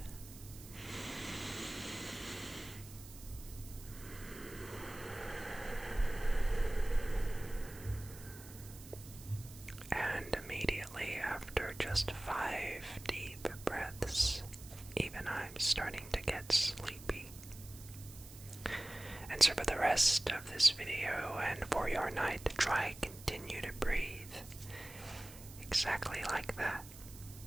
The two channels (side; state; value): right; noise; hiss, 16 dB below the sound